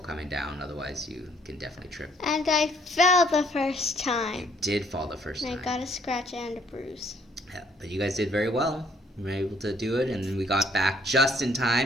down, otherwise you can definitely trip. And I fell the first time. You did fall the first time. I got a scratch and a bruise. Yeah, but you guys did very well. We were able to do it, and then we got back just in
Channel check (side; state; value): both; normal; correlation 0.64